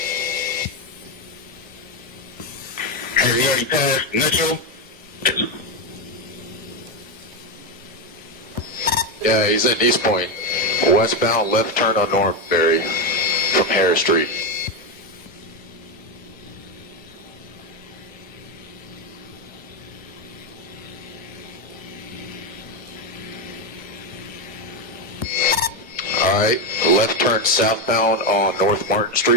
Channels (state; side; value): normal; both; correlation 0.08